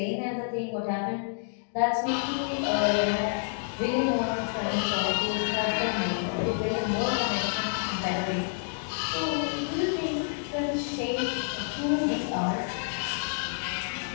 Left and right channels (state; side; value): silent; right; digital silence